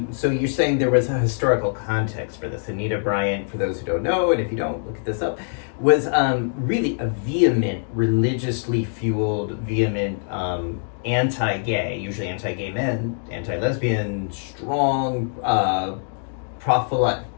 so you're saying there was a historical context for this. Anita Bryant, for those who don't know, and if you don't, look this up, was really a vehement, religiously fueled, anti-gay, usually anti-gay men, anti-lesbian, strong,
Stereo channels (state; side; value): silent; right; 63 dB below the other